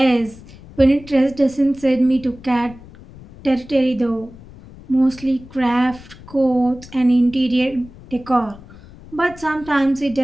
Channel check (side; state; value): left; noise; rumble, 20 dB below the sound